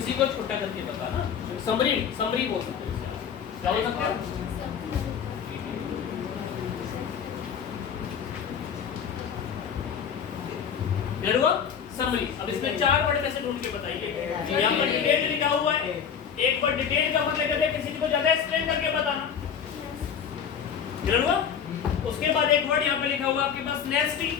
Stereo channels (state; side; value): quieter; right; 7.6 dB